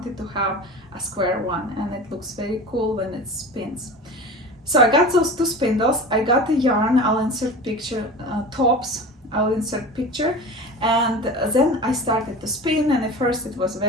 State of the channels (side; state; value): both; normal; correlation 0.33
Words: to have a square one, and it looks very cool when it spins. So I got those 2 spindles, I got the yarn, I'll insert picture, tops, I'll insert picture, and then I started to spin, and at first it was